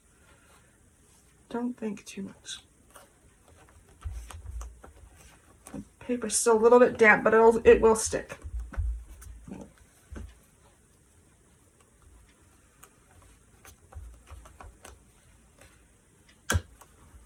think too much. The paper's still a little bit damp, but it will stick.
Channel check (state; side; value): identical; both; correlation 1.00